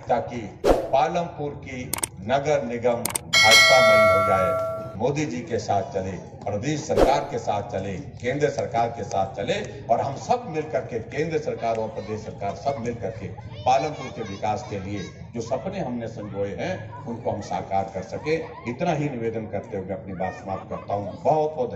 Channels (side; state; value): both; identical; correlation 1.00